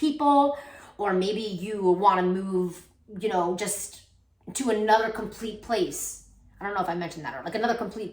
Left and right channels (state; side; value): identical; both; correlation 1.00